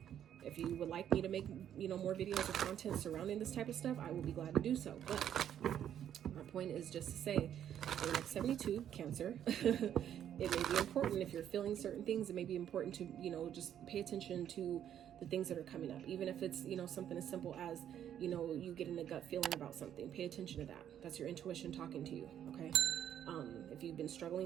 if you would like me to make, more videos or content surrounding this type of stuff, I will be glad to do so. But my point is just to say, for the next 72, Cancer, it may be important if you're feeling certain things. It may be important to, just pay attention to the things that are coming up. Even if it's, something as simple as, you getting a gut feeling about something. Pay attention to that. That's your intuition talking to you, okay? If you've been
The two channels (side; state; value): left; quieter; 10.0 dB